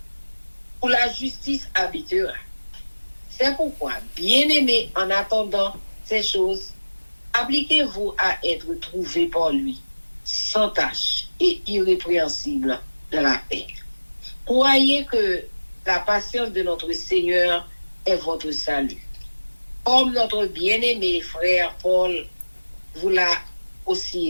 où la justice habitera. C'est pourquoi, bien-aimés, en attendant ces choses, Appliquez-vous à être trouvé par lui, sans tache et irrépréhensible dans la paix. Croyez que la patience de notre Seigneur est votre salut. Comme notre bien-aimé frère Paul vous l'a aussi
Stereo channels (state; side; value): inverted; both; correlation -1.00